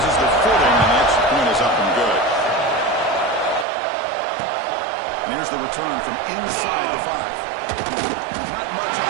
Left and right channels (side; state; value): left; drops out; at 3.7 s